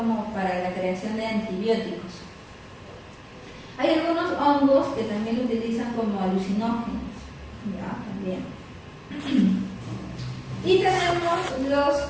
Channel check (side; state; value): both; identical; correlation 1.00